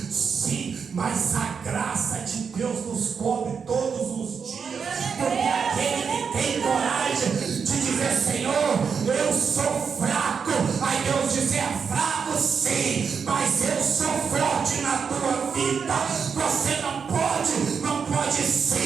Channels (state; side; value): quieter; left; 6.2 dB